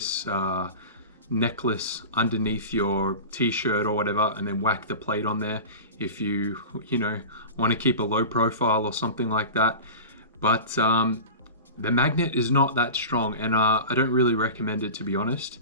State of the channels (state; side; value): inverted; both; correlation -0.31